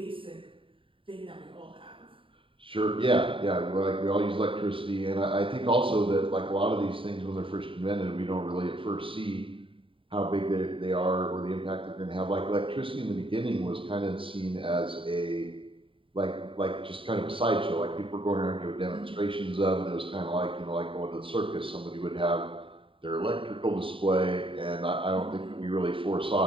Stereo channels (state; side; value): late; left; 0.25 ms